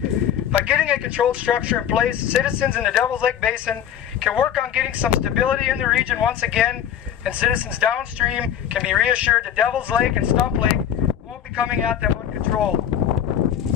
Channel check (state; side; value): quieter; right; 9.7 dB